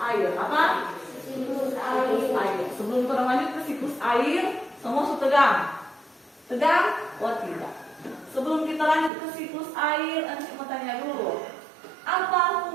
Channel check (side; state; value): left; drops out; at 9.1 s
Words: Apa? Siklus air. Sebelum kita lanjut ke siklus air, semua sudah tegang. Tegang? Oh tidak. Sebelum kita lanjut ke siklus air, nanti mau tanya dulu. Apa